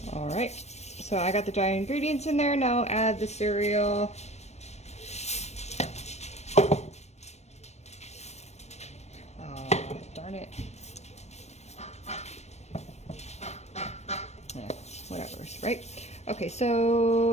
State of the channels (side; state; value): right; late; 0.32 ms